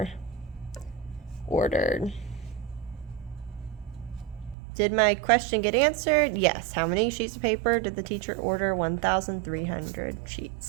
ordered. Did my question get answered? Yes. How many sheets of paper did the teacher order? 1,300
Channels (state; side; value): drops out; left; at 4.5 s